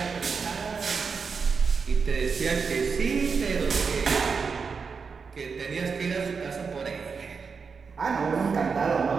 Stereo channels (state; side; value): quieter; left; 5.4 dB